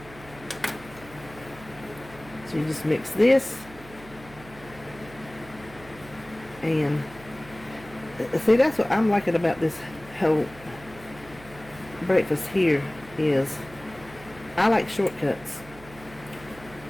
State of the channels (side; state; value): right; noise; hum, 19 dB below the sound